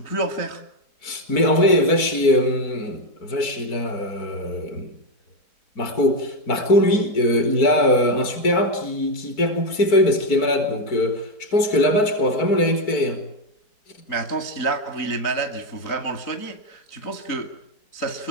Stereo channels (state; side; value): late; right; 4.5 ms